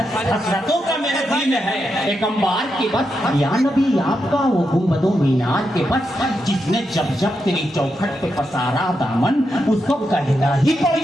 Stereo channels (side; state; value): both; normal; correlation 0.85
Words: کا میرے دل میں ہے ایک انبار کے بس یا نبی آپ کا وہ گنبد و مینار کے بس جس نے جب جب تیری چوکھٹ پہ پسارا دامن اس کو کہنا ہی پڑ